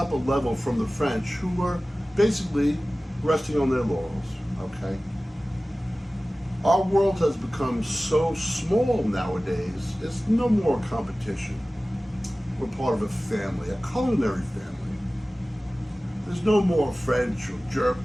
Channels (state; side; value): normal; both; correlation 0.97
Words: a level from the French, who were basically resting on their laurels, okay? Our world has become so small nowadays, it's no more competition. We're part of a family, a culinary family. There's no more French or German.